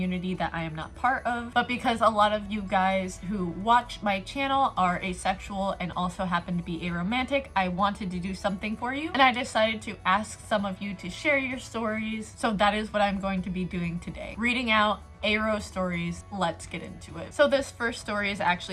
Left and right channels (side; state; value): both; identical; correlation 1.00